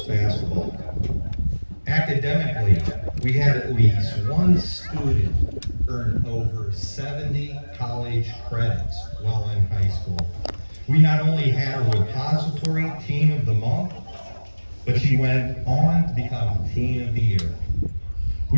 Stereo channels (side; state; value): both; inverted; correlation -1.00